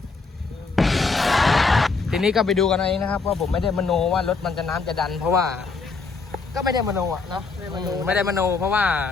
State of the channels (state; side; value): quieter; right; 4.4 dB